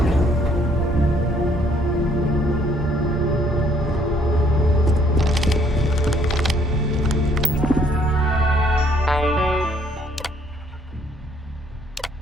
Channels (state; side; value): normal; both; correlation 0.64